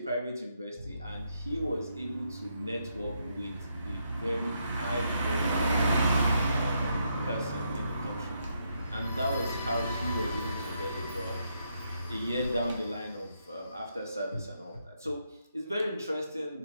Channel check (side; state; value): both; inverted; correlation -0.78